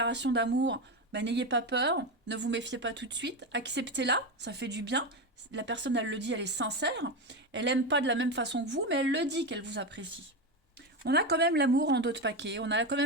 d'amour, ben, n'ayez pas peur, ne vous méfiez pas tout de suite, acceptez-la, ça fait du bien. La personne, elle le dit, elle est sincère. Elle n'aime pas de la même façon que vous, mais elle le dit qu'elle vous apprécie. On a quand même l'amour en dos de paquet, on a quand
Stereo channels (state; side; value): normal; both; correlation 0.16